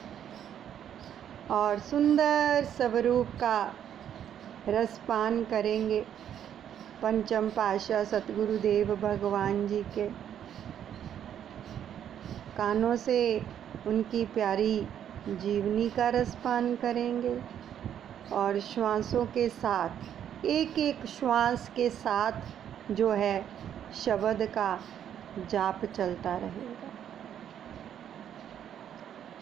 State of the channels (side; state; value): left; quieter; 9.7 dB